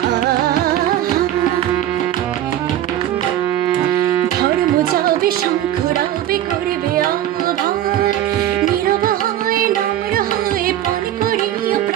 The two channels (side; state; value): left; quieter; 12.3 dB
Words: ধর্ম যাবে শঙ্খ রাবে করবে আহ্বান, নীরব হয়ে নম্র হয়ে পান করিও